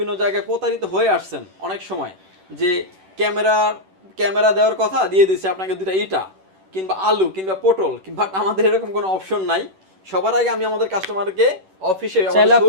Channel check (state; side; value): late; left; 11 ms